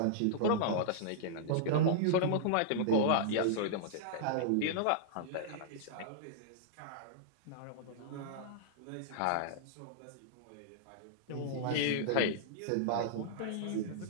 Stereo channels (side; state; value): both; different; correlation -0.02